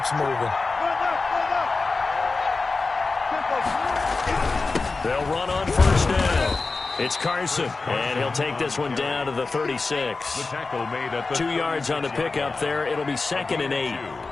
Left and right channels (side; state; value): right; quieter; 3.9 dB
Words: moving. They'll run on 1st down. It's Carson, and he'll take this one down to the 36. The tackle made at the 2 yards on the pickup there. It'll be 2nd and 8.